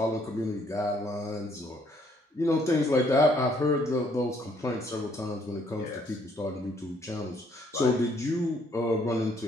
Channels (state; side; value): normal; both; correlation 0.67